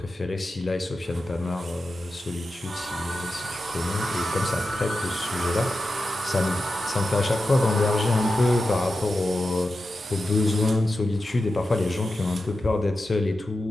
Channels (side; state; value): both; normal; correlation 0.91